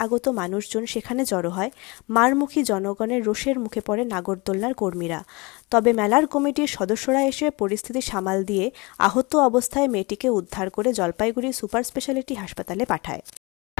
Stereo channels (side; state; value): right; quieter; 26.3 dB